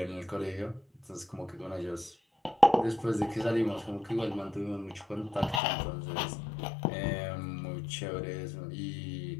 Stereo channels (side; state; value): right; drops out; at 5.6 s